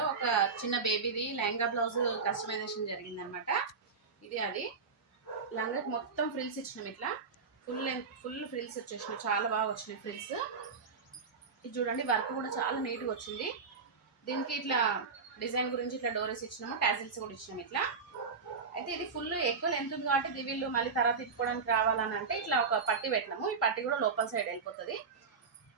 ఒక చిన్న బేబీది లెహంగా బ్లౌజ్ కస్టమైజేషన్ జరిగిందనమాట. ఇది అది లంగాకి మొత్తం ఫ్రిల్స్ ఇచ్చినాం. ఇట్లా ఫుల్ ఫ్రిల్స్ వచ్చేసినాయి. చాలా బాగా వచ్చినాయి ఫ్రిల్స్. ఇది చూడండి, వర్క్ కూడా చాలా నీట్గా వచ్చింది. దీనికి ఇట్లా డిజైన్ గురించి ఇట్లా డోరీస్ ఇచ్చినాము, టాజిల్స్ కూడా ఇచ్చినాము ఇట్లా. అయితే ఇది ఫుల్ ఎక్కువ లెంత్ ఉంది కాబట్టి వీళ్ళు మళ్ళీ తర్వాత తిప్పుకోవడానికి రావాలని అంటే ఇట్లా ఒక పట్టి పెట్టినాము. ఈ పట్టి కూడా లోపల సైడ్ వెళ్ళిపోతుంది.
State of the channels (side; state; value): left; quieter; 5.1 dB